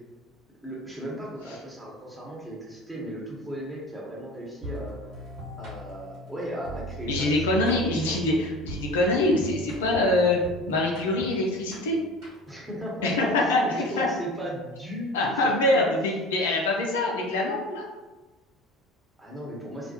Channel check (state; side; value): normal; both; correlation 0.37